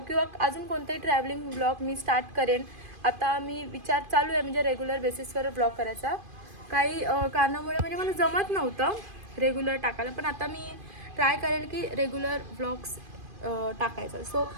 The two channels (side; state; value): left; late; 2.5 ms